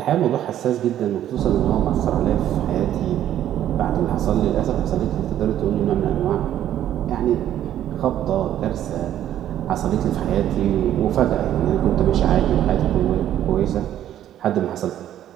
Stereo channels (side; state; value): left; quieter; 11.5 dB